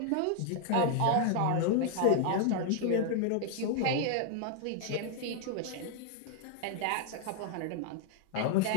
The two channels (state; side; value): different; both; correlation 0.00